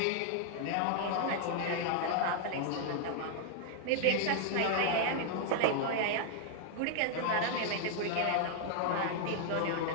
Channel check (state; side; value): different; both; correlation 0.00